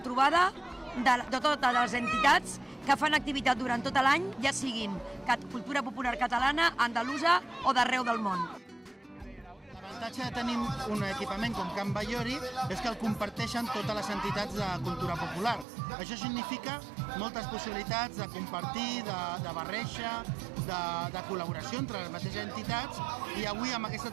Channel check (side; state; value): left; drops out; at 15.7 s